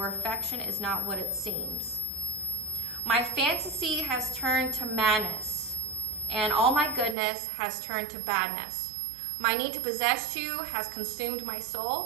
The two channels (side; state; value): left; drops out; at 7.2 s